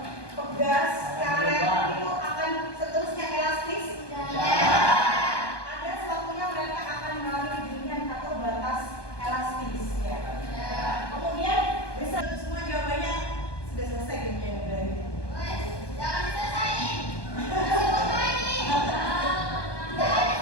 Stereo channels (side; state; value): right; late; 1.2 ms